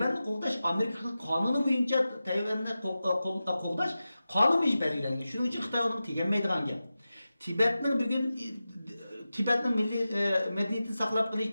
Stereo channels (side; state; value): both; inverted; correlation -0.94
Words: qoğdaş Amerika kanunu boyunca Tayvan'ı qoğdaş kanun boyunca belirlenген. Şunun için Xitay onu tegenmeydigan gap. Tibet'nin milli medeniyetini saklap